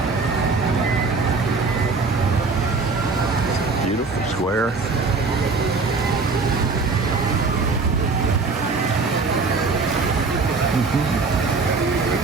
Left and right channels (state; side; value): quieter; left; 4.2 dB